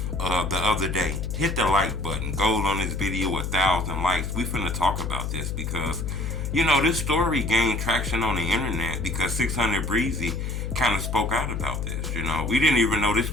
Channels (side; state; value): left; noise; hum, 3 dB below the sound